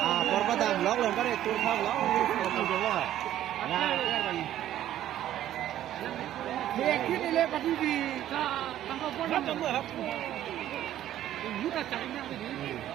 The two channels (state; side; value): quieter; left; 12.4 dB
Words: apor apa dam log lên cái này tôi không log không được rồi Dia kini le pati di tangkap pun tak tahu apa. Ini tak cari yang ini.